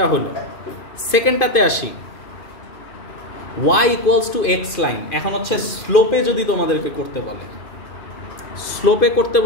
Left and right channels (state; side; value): late; right; 2.5 ms